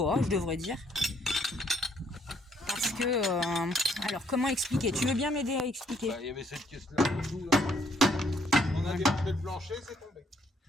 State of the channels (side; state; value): both; normal; correlation 0.68